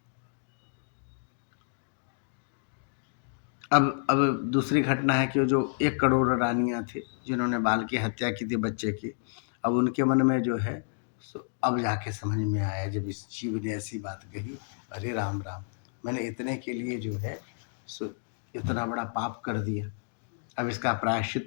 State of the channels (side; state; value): right; silent; digital silence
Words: अब दूसरी घटना है कि जो 1 करोड़ रानियां थी जिन्होंने बाल की हत्या की थी, बच्चे की। अब उनके मन में जो है, अब जाके समझ में आया जब इस जीव ने ऐसी बात कही, अरे राम राम, मैंने इतने के लिए जो है इतना बड़ा पाप कर दिया, अब इसका